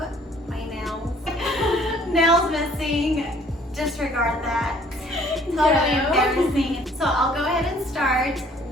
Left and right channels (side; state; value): both; normal; correlation 0.57